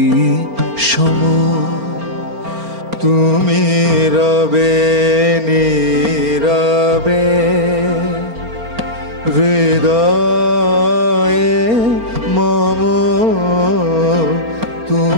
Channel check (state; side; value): late; left; 4.3 ms